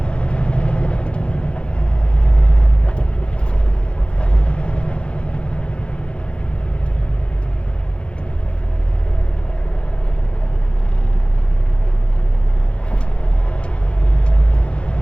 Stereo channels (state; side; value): late; right; 0.057 ms